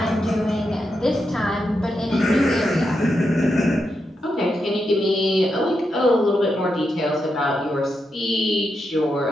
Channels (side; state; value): both; normal; correlation 0.85